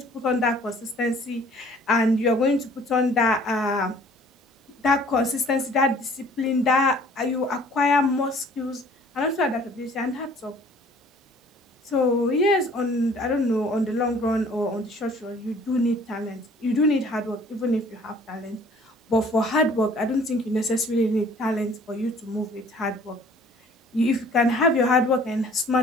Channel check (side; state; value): both; normal; correlation 0.54